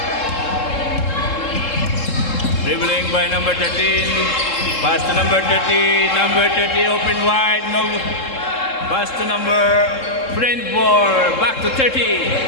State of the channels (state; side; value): late; right; 3.7 ms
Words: Dribbling by number 13, pass to number 30, open wide, no, pass to number Brentford, back to